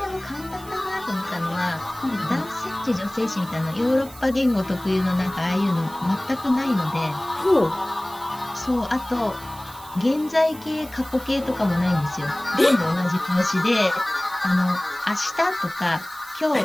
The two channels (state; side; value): noise; right; hiss, 20 dB below the sound